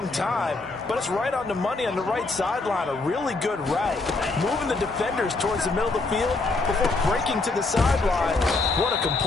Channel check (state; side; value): quieter; right; 3.5 dB